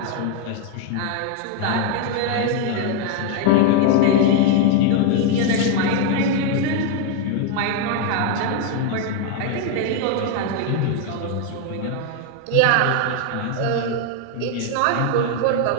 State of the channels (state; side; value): different; both; correlation 0.01